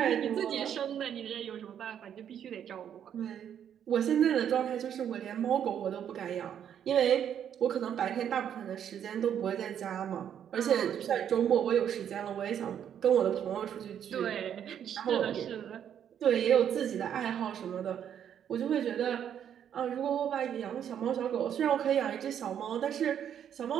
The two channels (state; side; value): quieter; left; 9.2 dB